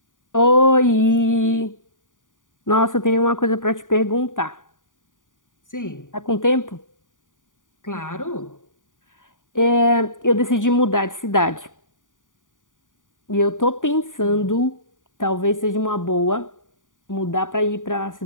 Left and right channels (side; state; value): right; late; 0.88 ms